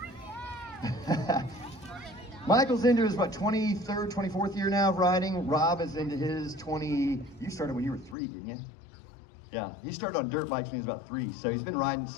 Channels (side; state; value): right; drops out; at 8.2 s